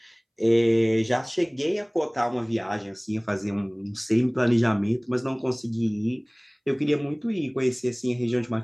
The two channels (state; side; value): identical; both; correlation 1.00